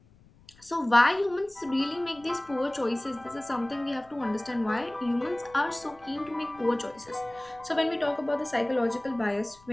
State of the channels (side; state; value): left; noise; rumble, 27 dB below the sound